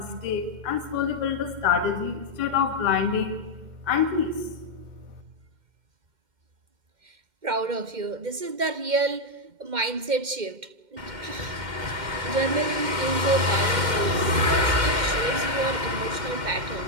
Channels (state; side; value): late; left; 2.1 ms